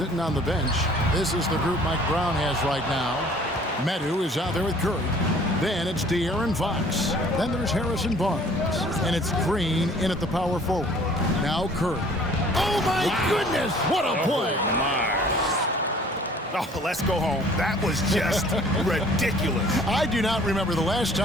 on the bench, this is the group Mike Brown has right now. Medu is out there with Curry. Then it's De'Aaron Fox. Then there's Harrison Barnes. And it's Green in at the power forward. Now Curry. Oh, my goodness! What a play! Oh, my. Oh, let's go home. That was just ridiculous. I do not remember the last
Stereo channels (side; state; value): both; normal; correlation 0.53